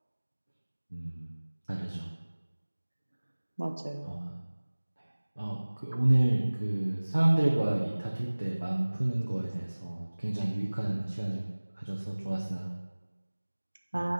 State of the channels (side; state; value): both; inverted; correlation -1.00